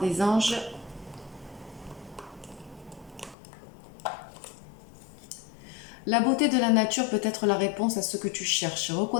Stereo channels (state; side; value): drops out; right; at 3.4 s